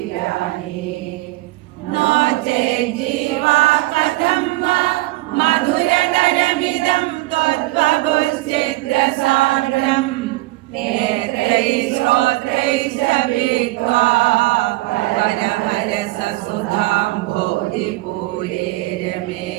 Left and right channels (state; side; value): quieter; left; 19.8 dB